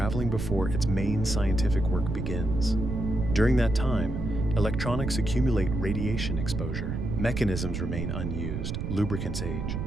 before its main scientific work begins. During that time, electronics accumulate radiation exposure. Mechanisms remain unused, lubricants age.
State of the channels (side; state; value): right; noise; rumble, 3 dB below the sound